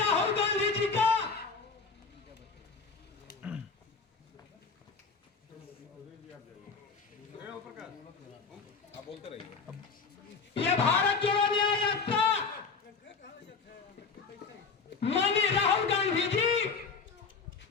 गांधी जी का यह भारत जोड़ो न्याय यात्रा माननीय राहुल गांधी जी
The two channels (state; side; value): quieter; right; 5.0 dB